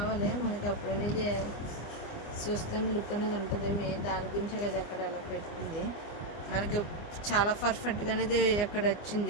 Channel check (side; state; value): right; late; 24 ms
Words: మనకి అప్పుడు అనేది చూస్తాం లుక్ అనేది ఉంటుంది. మెయిన్ దాని గురించే కదా అక్కడ అలా పెట్టుకుంది. మనకి చాలా పర్ఫెక్ట్గా అనేది అక్కడ